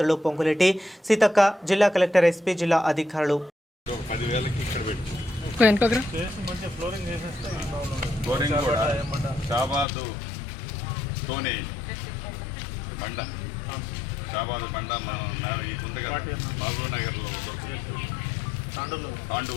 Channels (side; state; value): right; drops out; at 9.9 s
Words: పొంగులేటి సీతక్క, జిల్లా కలెక్టర్, ఎస్పీ, జిల్లా అధికారులు. షాబాద్ బండ మహబూబ్ నగర్లో దొరుకుతుంది.